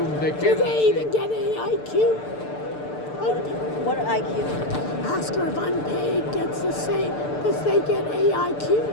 they Do cannot they see. even get AIQ? What IQ? Ask her if unpaid gets the same. Does they get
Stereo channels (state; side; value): late; right; 6.8 ms